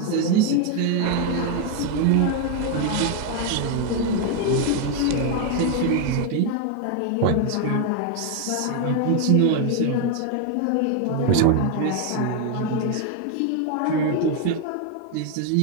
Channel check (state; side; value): different; both; correlation 0.01